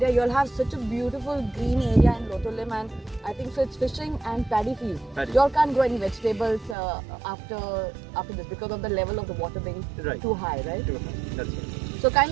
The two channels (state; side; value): drops out; left; at 6.8 s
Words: you'll have such a beautiful green area in Lotolim, and I think so it's fishing and paddy fields. You all can't grow any vegetables after this because of the level of the water being too high, right? Too high. That's right. So